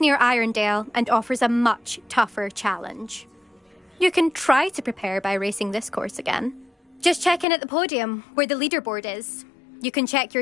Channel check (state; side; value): drops out; right; at 7.5 s